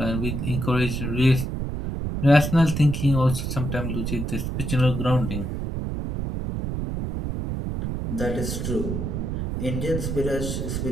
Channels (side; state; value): right; noise; rumble, 3 dB below the sound